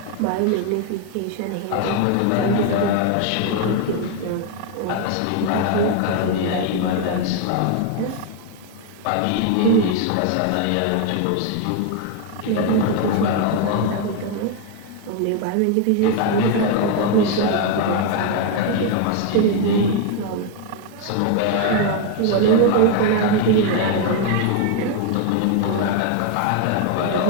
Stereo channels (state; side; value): different; both; correlation 0.01